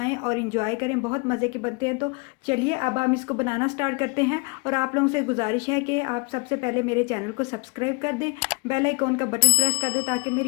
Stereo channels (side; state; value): right; quieter; 31.2 dB